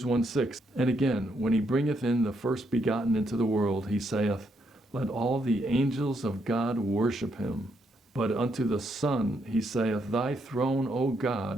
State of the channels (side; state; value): both; normal; correlation 0.76